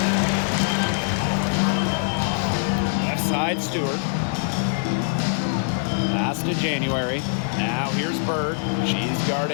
Left side, Stewart. Pass to January. Now here's Bird. She's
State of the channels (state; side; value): silent; right; 62 dB below the other